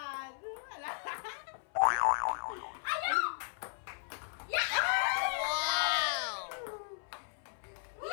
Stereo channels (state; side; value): silent; right; 54 dB below the other